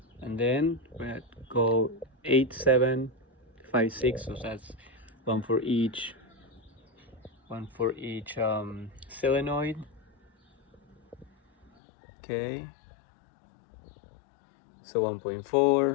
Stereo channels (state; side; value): drops out; right; at 11.7 s